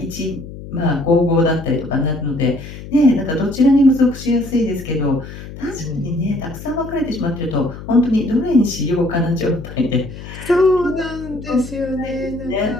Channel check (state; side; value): noise; left; hum, 13 dB below the sound